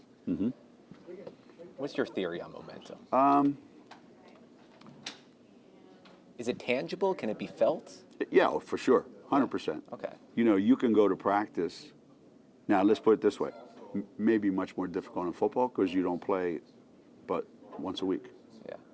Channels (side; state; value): both; identical; correlation 1.00